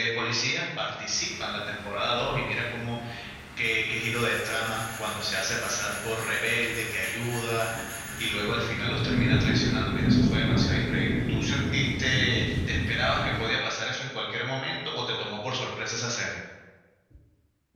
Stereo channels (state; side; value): identical; both; correlation 1.00